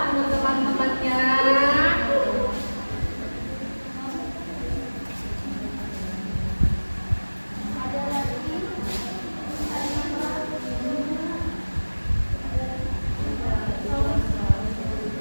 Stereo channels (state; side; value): inverted; both; correlation -1.00